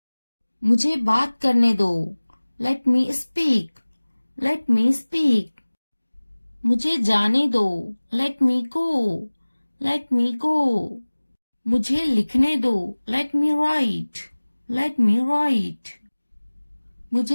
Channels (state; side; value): inverted; both; correlation -1.00